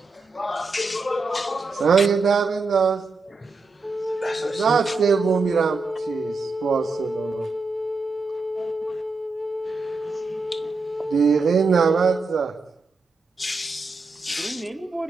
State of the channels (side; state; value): left; quieter; 3.9 dB